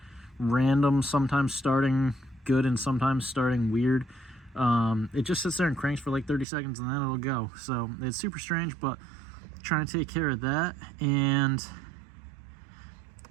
random sometimes starting good and sometimes starting weird, it just sits there and cranks for like 30 seconds and then it'll go. So it's super strange, but trying to take care of that. And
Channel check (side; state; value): left; drops out; at 6.5 s